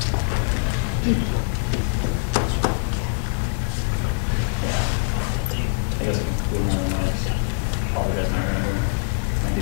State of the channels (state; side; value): silent; right; 63 dB below the other